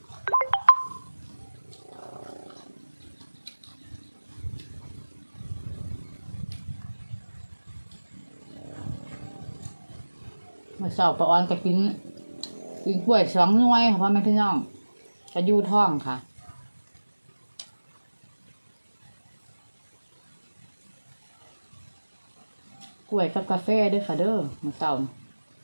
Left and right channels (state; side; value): inverted; both; correlation -1.00